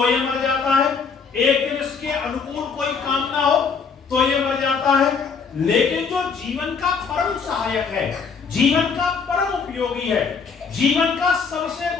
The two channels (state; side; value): quieter; right; 5.6 dB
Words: ये मर जाता है, एक दिन इसके अनुकूल कोई काम ना हो तो ये मर जाता है। लेकिन जो जीवन का परम सहायक है, जीवन का परम उपयोगी है, जीवन का सबसे